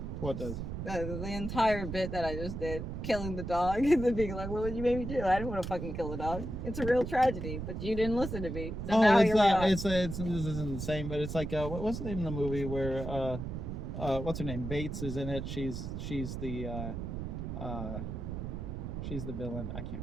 What does? The entire bit that I just did, killing the dog, and then being like, "What would you make me do? I didn't want to fucking kill the dog. It's a real tragedy, but you didn't listen to me." So now it's here we are. this isn't the same, but it's like what's the name of the movie where what's her name? Bates is in it. She's the villain. I can't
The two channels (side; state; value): right; noise; rumble, 5 dB below the sound